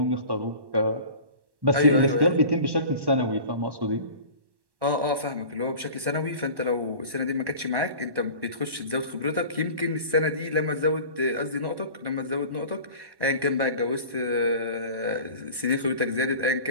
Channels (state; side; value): late; left; 1.1 ms